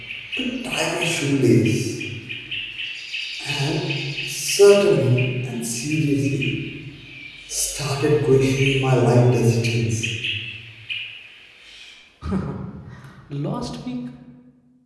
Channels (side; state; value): both; identical; correlation 1.00